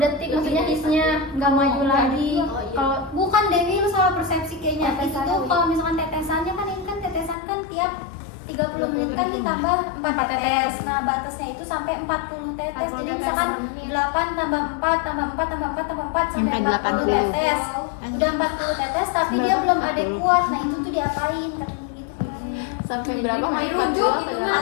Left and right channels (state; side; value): drops out; right; at 7.4 s